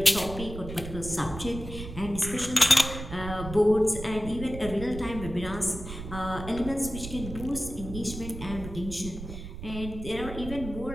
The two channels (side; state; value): right; noise; rumble, 10 dB below the sound